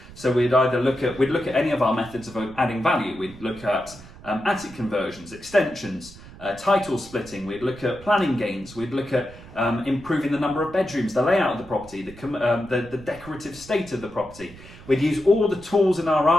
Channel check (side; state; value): right; noise; rumble, 18 dB below the sound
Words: So we'd look at any of our methods of adding value. We'd look at attic conversions, extensions, title splitting. We'd look at planning gains. We'd look at improving the number of bedrooms, the layout of the property, the decorative state of the property. We'd use all the tools in our